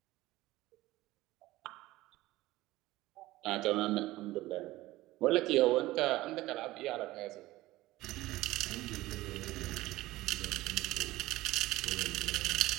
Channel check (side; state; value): left; quieter; 17.7 dB